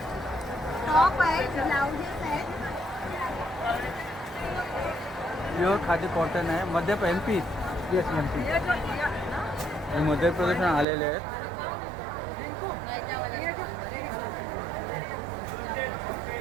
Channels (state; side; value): drops out; left; at 10.9 s